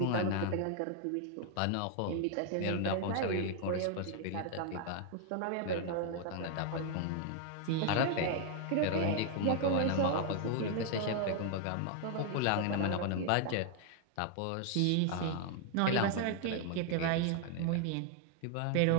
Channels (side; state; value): both; different; correlation 0.00